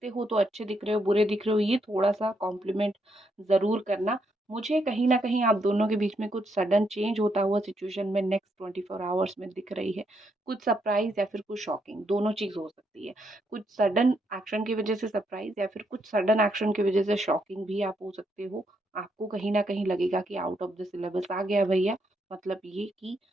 हो तो अच्छे दिख रहे हो, बुरे दिख रहे हो, ये थोड़ा-सा कॉम्प्लीमेंट ज़रूर करना। मुझे कहीं न कहीं आप दोनों के बीच में कुछ सडन चेंज होता हुआ सिचुएशन में नेक्स्ट 24 आवर्स में दिख रही है। कुछ सरप्राइज़ या फिर कुछ शॉकिंग, दोनों चीज़ हो सकती है। कुछ सडन एक्शन की वज़ह से सरप्राइज़ या फिर कुछ सडन एक्शन की वज़ह से शॉकिंग भी आप हो सकते हो। आपको कहीं न कहीं लगेगा कि आउट ऑफ द सिलेबस आ गया भैया, मतलब ये कि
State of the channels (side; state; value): both; normal; correlation 0.77